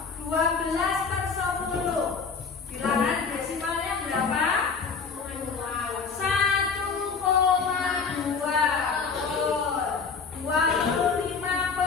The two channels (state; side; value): quieter; right; 5.3 dB